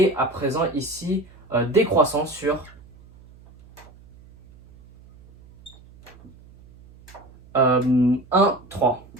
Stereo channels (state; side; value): noise; right; hum, 24 dB below the sound